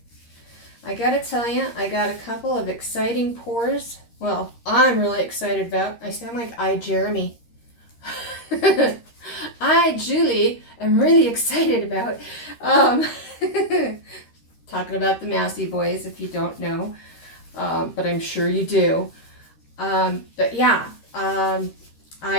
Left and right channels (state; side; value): late; right; 13 ms